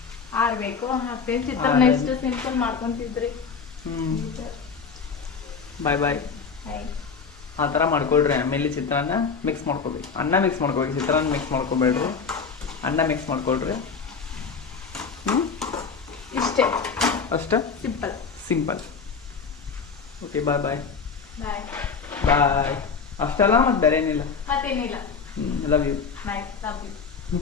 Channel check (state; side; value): quieter; right; 5.5 dB